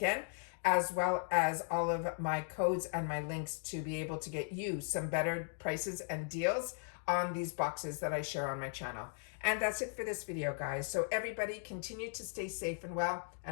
as well as all of my codes and my links to be able to get you some better prices and deals on these boxes that I share on my channel. And that's it for this video, guys. So everybody continue to stay safe and well,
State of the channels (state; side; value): silent; right; digital silence